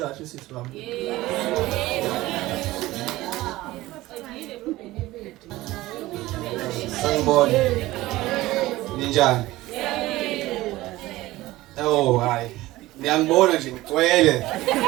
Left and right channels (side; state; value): left; quieter; 17.7 dB